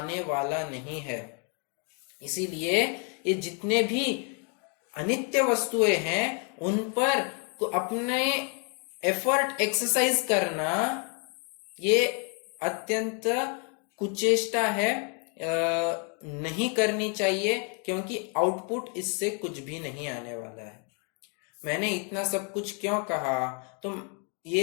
वाला नहीं है। इसीलिए ये जितने भी अनित्य वस्तुएं हैं उन पर तो अपने एफर्ट एक्सरसाइज करना ये अत्यंत कुचेष्टा है, नहीं करनी चाहिए, क्योंकि आउटपुट इससे कुछ भी नहीं आने वाला है। मैंने इतना सब कुछ क्यों कहा? तो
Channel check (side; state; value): right; quieter; 38.3 dB